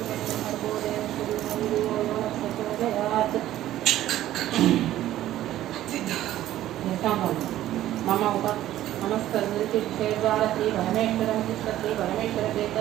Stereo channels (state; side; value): quieter; left; 13.5 dB